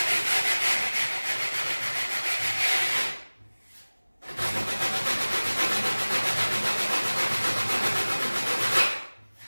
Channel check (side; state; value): both; inverted; correlation -1.00